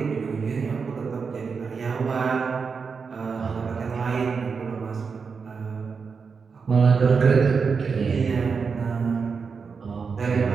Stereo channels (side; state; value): left; quieter; 5.4 dB